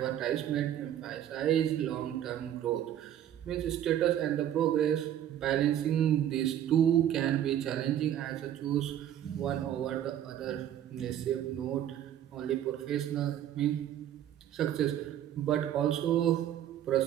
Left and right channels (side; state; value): left; quieter; 11.0 dB